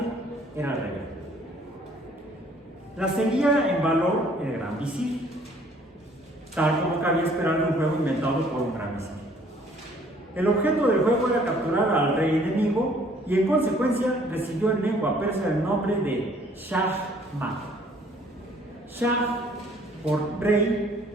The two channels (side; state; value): both; normal; correlation 0.59